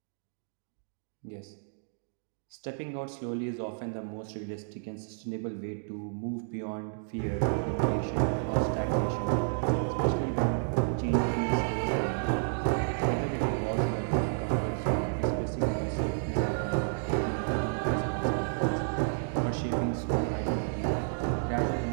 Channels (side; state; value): left; silent; digital silence